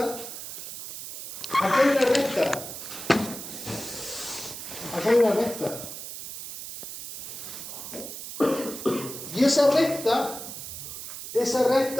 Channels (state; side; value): noise; right; hiss, 9 dB below the sound